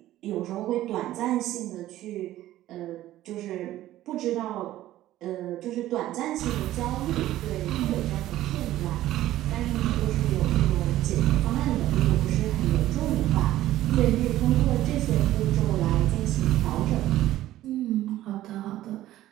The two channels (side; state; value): left; quieter; 14.5 dB